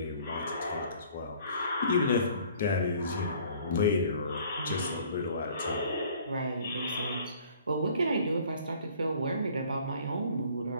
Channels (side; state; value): both; inverted; correlation -0.54